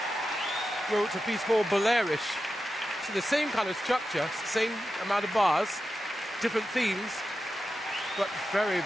wrote a piece called Bolerish. So the same kind of structure, same amount of bars, different themes, but very,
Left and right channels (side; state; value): both; normal; correlation 0.91